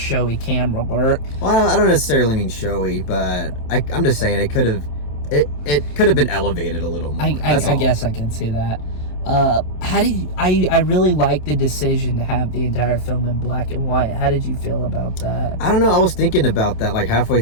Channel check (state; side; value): late; right; 27 ms